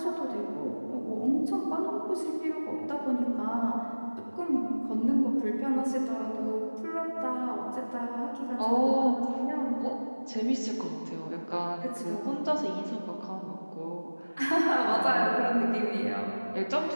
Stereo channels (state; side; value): inverted; both; correlation -1.00